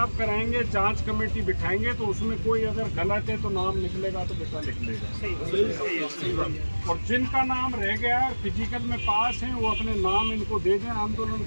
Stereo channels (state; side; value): inverted; both; correlation -1.00